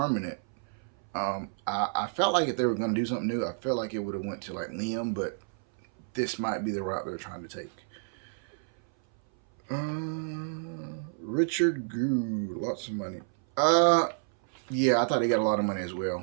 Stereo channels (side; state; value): left; silent; 58 dB below the other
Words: I felt like if they were going to do something new, I felt like it would have went to like Liam, but this might be the route they're trying to take. Richard Goo, lots of money. Yeah, I thought they got a lot of money as